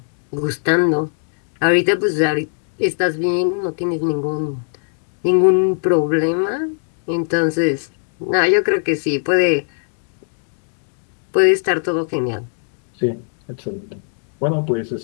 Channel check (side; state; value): right; silent; digital silence